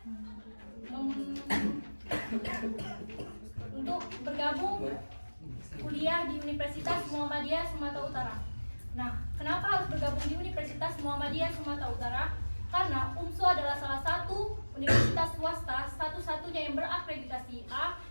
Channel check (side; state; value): both; inverted; correlation -1.00